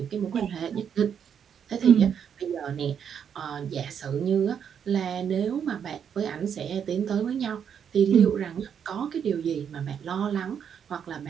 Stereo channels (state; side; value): quieter; left; 7.9 dB